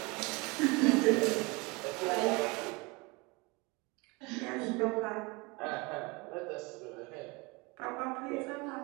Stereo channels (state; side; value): quieter; left; 26.7 dB